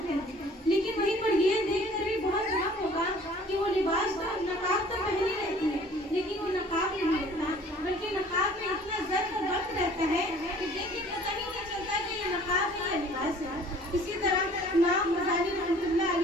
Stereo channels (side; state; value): both; normal; correlation 0.52